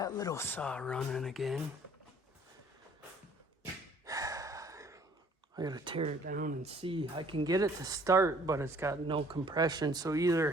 little saw running again. I gotta tear it down and see. I can get it to start, but it's got no compression. So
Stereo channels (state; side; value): normal; both; correlation 0.57